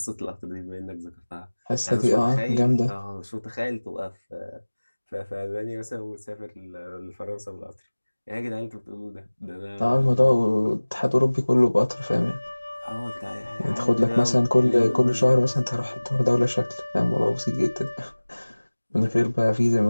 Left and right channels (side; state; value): both; inverted; correlation -1.00